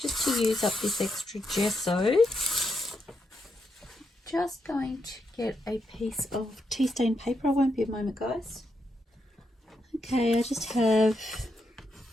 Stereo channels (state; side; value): normal; both; correlation 0.82